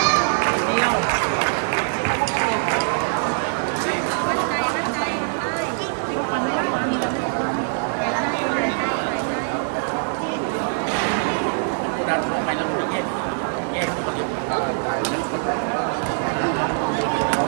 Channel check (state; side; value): silent; left; digital silence